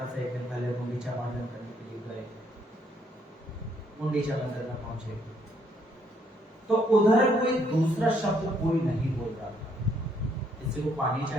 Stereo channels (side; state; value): both; normal; correlation 0.70